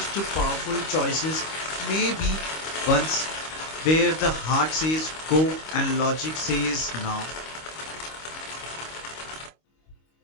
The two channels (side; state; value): right; late; 25 ms